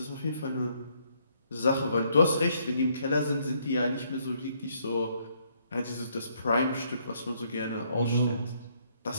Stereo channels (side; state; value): both; inverted; correlation -0.70